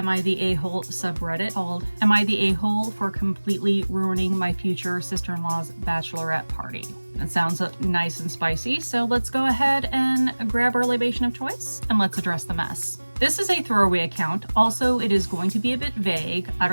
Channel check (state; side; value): inverted; both; correlation -1.00